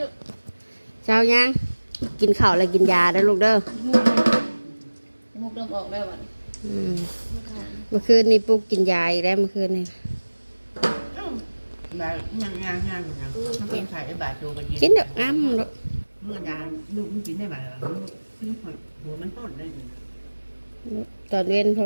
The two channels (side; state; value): both; inverted; correlation -1.00